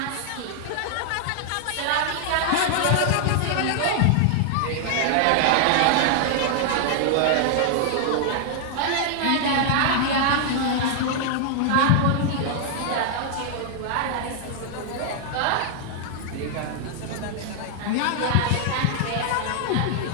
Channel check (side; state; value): both; different; correlation 0.00